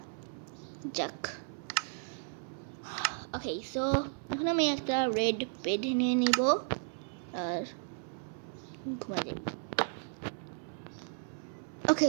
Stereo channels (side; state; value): left; silent; 55 dB below the other